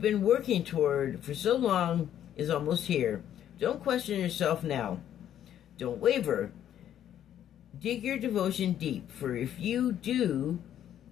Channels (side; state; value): right; quieter; 10.6 dB